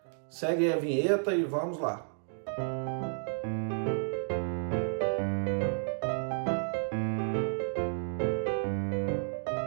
segue aí a vinheta e vamos lá.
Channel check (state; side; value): silent; left; digital silence